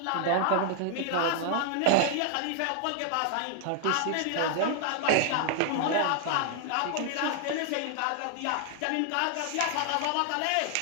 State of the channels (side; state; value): both; different; correlation 0.00